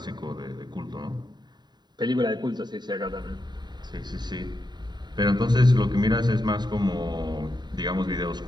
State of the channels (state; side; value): late; left; 0.21 ms